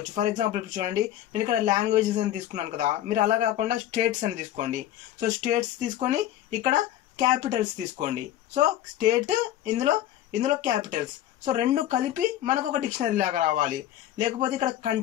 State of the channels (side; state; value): right; quieter; 12.6 dB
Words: ఫర్ ఎగ్జాంపుల్ ఇప్పుడు చూడండి, నేను ఇక్కడ లాంగ్వేజెస్ అని తీసుకున్నాను కదా, మీరు అలా కాకుండా స్టేట్స్ అని తీసుకోండి. సో స్టేట్స్ తీసుకొని ఇక్కడ క్యాపిటల్స్ తీసుకోండి. సో స్టేట్, ఇందులో క్యాపిటల్స్. సో రెండు కలిపి మనకు ఒక డిక్షనరీ లాగా రావాలి. లేకపోతే ఇక్కడ